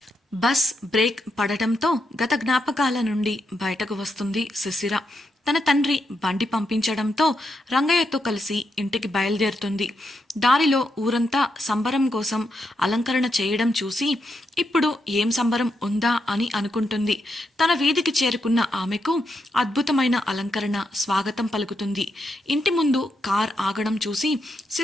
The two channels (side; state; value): both; normal; correlation 0.82